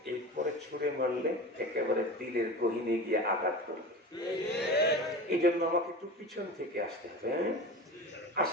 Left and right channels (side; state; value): both; normal; correlation 0.31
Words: এরপরে ছুঁড়ে মারলে একেবারে দিলের গহীনে গিয়ে আঘাত করবে। এই জন্য আমাকে একটু পিছন থেকে আসতে হবে।